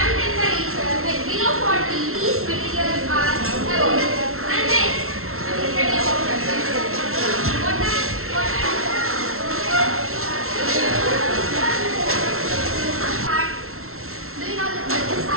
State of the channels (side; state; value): left; late; 0.62 ms